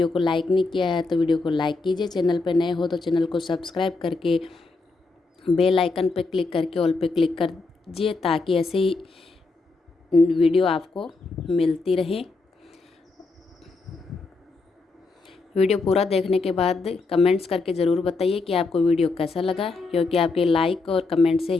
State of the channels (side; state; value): right; quieter; 3.8 dB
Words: को लाइक नहीं किया है तो वीडियो को लाइक कीजिए। चैनल पर नए हो तो चैनल को सब्सक्राइब करके बेल आइकन पर क्लिक करके ऑल पे क्लिक कर दीजिए, ताकि ऐसे ही वीडियो आपको मिलती रहे। वीडियो पूरा देखने के बाद कमेंट्स करके ज़रूर बताइए कि आपको वीडियो कैसा लगा, क्योंकि आपके लाइक और कमेंट से